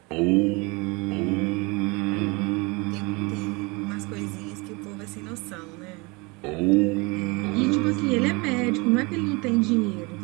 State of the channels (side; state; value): left; quieter; 27.2 dB